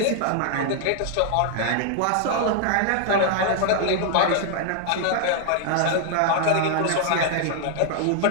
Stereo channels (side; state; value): both; different; correlation 0.00